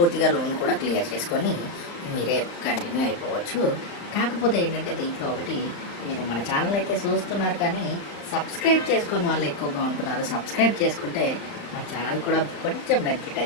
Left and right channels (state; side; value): late; right; 35 ms